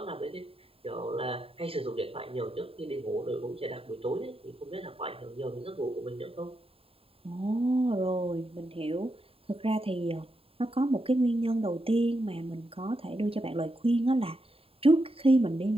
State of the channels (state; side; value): late; left; 0.27 ms